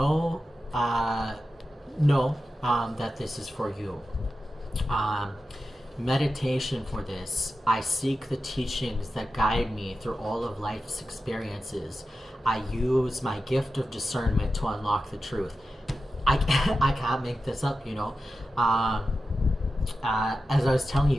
that this is for you. Meditation for this. I seek the teachings that guide me through all of life's experiences. I use my gift of discernment to unlock the truth. I can't make this up, as I was telling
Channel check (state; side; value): normal; both; correlation 0.92